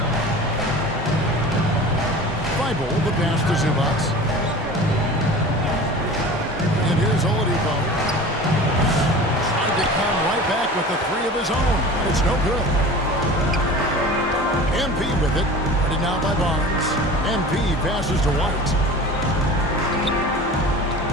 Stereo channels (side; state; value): both; normal; correlation 0.38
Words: Thibault, the pass to Zubac. And here's Oladipo. Trying to come right back with the 3 of his own. But it's no good. MP with it. Headed now by Barnes. MP passes to White.